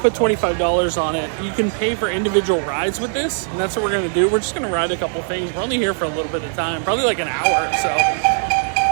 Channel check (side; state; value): left; silent; digital silence